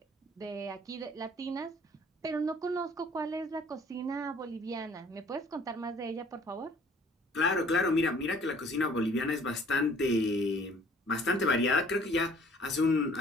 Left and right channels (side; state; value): both; normal; correlation 0.55